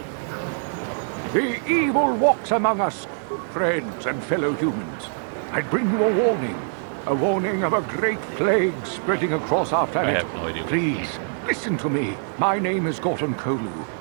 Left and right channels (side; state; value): left; silent; digital silence